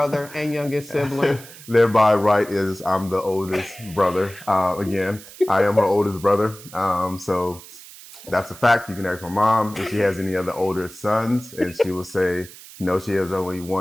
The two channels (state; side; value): noise; right; hiss, 18 dB below the sound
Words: and youngest sibling. Thereby, right, is I'm the oldest brother. Again, I am her oldest brother. So that's a fact. You can ask my mom if she has any other older sons, and she will say, no, she has only